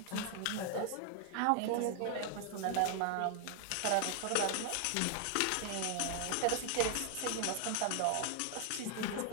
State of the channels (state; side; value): different; both; correlation 0.00